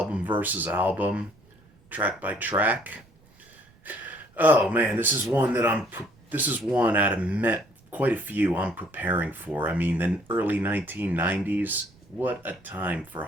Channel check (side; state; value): right; noise; rumble, 29 dB below the sound